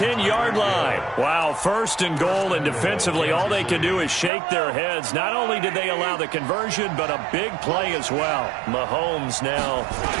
line. Wow, 1st and goal, and defensively all they can do is shake their heads. Not only did they allow the conversion, but a big play as well. Mahomes now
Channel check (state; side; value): drops out; left; at 4.3 s